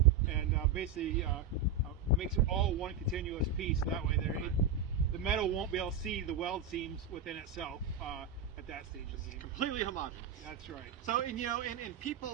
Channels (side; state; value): left; quieter; 5.6 dB